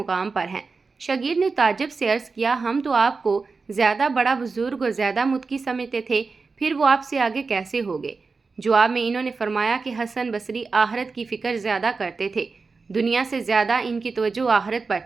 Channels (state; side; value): quieter; left; 4.4 dB